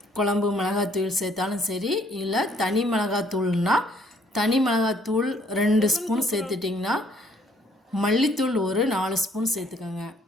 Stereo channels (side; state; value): both; normal; correlation 0.64